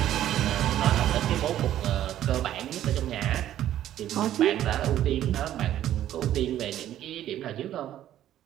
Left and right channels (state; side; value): quieter; left; 12.2 dB